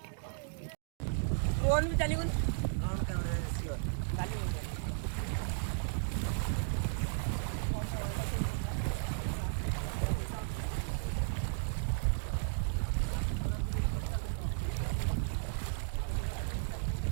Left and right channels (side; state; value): left; silent; digital silence